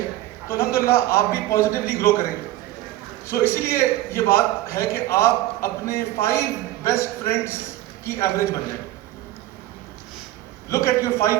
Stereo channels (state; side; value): quieter; left; 15.3 dB